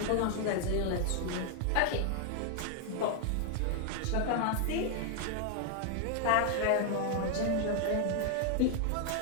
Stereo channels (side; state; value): both; different; correlation 0.00